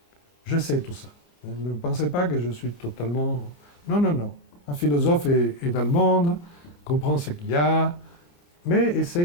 Je sais tout ça. Ne pensez pas que je suis totalement... Non, non, non. Un philosophe est dans le monde, comprend ce qu'il y a, mais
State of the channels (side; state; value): right; late; 29 ms